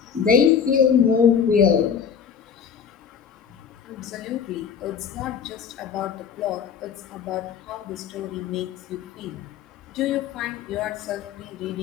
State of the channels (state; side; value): quieter; right; 7.4 dB